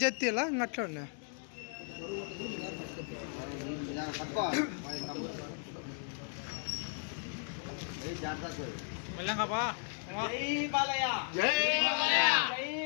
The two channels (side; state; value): right; silent; 54 dB below the other